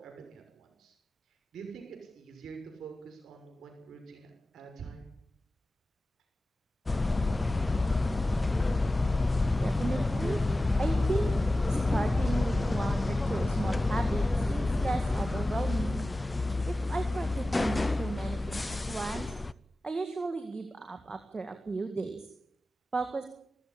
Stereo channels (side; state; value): both; normal; correlation 0.95